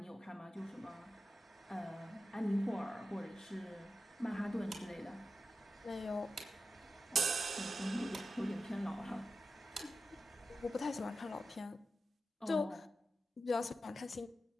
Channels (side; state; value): both; normal; correlation 0.92